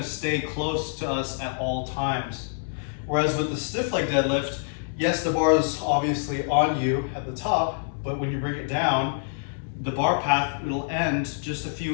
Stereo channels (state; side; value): silent; right; digital silence